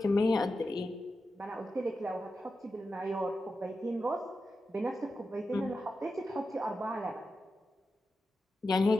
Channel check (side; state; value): both; normal; correlation 0.90